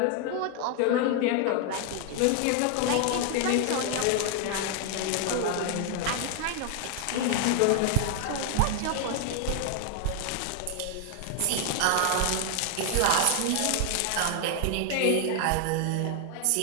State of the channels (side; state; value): both; different; correlation 0.00